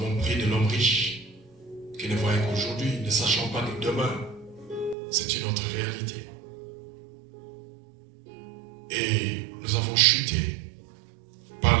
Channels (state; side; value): drops out; left; at 5.0 s